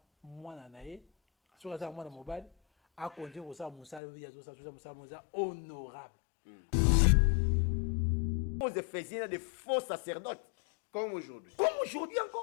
mwana nae. Sur ça mwana mobile a conduire ko sa musala ya zo sa musala honorable. Aux Éphésiens des faux sacerdotes. Comme aujourd'hui. Comme aujourd'hui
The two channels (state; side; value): drops out; right; at 4.0 s